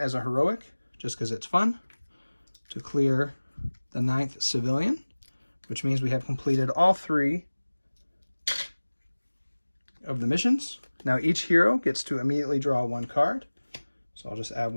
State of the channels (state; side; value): inverted; both; correlation -1.00